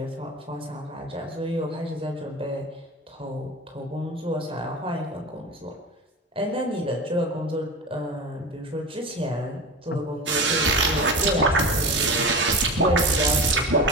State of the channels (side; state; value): both; normal; correlation 0.29